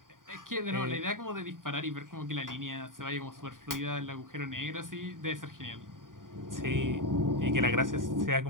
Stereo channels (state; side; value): late; left; 0.89 ms